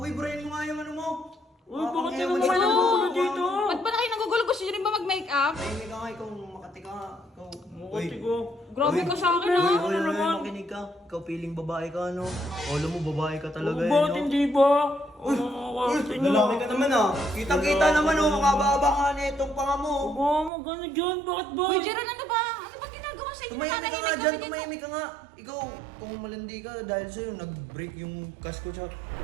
brain mo nga yung ano mo. Uy, bakit Ewan naman ko. kayo nagugulo dito? Ba't ba na kayo nagugulo? Gusto nyo rin ba mag-makeup? Tahimik ka nga, ikaw makati ka nga. Ikaw. Mukati ko. Grabe ka sa akin, Uy, ha? uy, uy, naman? makinig ka. Ikaw piling babae ka, ano? Alam mo, babae ka talaga eh, Bakit no? hindi ba? Lalaki ka naman ah. Kitang-kita naman oh, makababa ka na itong panga mo. Mama, gano'n dyan. Bakit ba? Uy, Jeron, ano ba? Ano bang ginagawa sa inyo? Tumahimik ka nga Nananahimik dyan, kami dito. tumahimik ka nga. Ikaw, kung malandi ka dahil sa'yo, nag-break yung cash ko sa...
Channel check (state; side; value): drops out; left; at 20.5 s